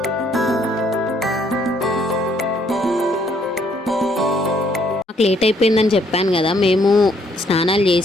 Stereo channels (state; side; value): normal; both; correlation 0.67